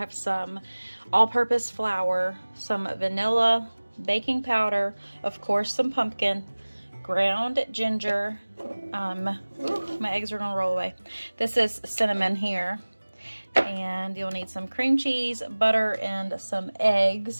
some all-purpose flour, some vanilla, baking powder, of course some pumpkin, ground ginger, my eggs are going to roll away. This is cinnamon here, and you'll need some cream cheese, butter, and some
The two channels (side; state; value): both; inverted; correlation -1.00